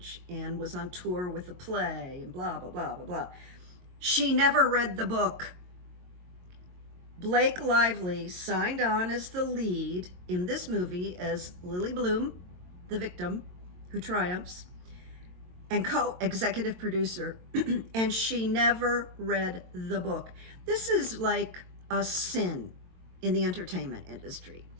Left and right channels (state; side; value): late; left; 22 ms